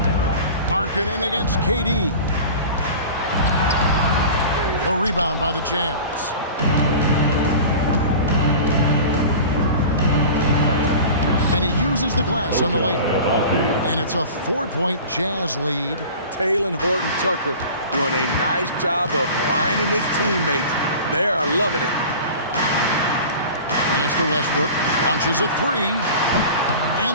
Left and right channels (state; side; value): inverted; both; correlation -0.37